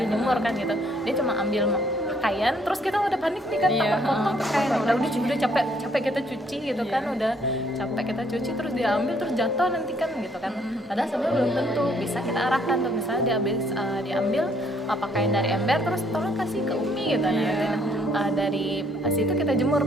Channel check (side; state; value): both; normal; correlation 0.66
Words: iya. jemur kan gitu. Dia cuma ambil pakaian, terus kita udah panik nih kan, Iya, potong pakaian. kotor Udah capek kita cuci gitu kan, udah capek kita cuci terus diambil terus jatuh nanti kan gitu kan. Padahal sebenarnya belum tentu, bisa kita arahkan tuh, misalnya diambil pakaian dari ember terus tolong kasih ke Umi gitu. Nah, nanti dari situ kita jemur